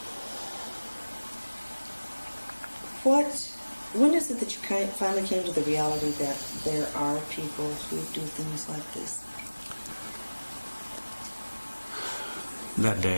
When is it that you finally came to the reality that there are people who do things like this? That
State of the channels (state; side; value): inverted; both; correlation -1.00